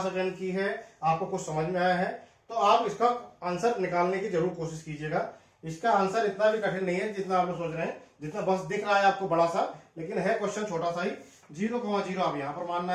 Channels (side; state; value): both; identical; correlation 1.00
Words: अटेंड की है, आपको कुछ समझ में आया है, तो आप इसका आंसर निकालने की जरूर कोशिश कीजिएगा। इसका आंसर इतना भी कठिन नहीं है जितना आप लोग सोच रहे हैं, जितना बस दिख रहा है आपको बड़ा सा, लेकिन है क्वेश्चन छोटा सा ही। 0,0 आप यहां पर मानना